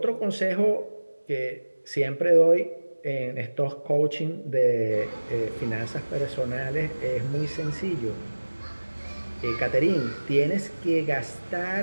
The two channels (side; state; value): both; inverted; correlation -1.00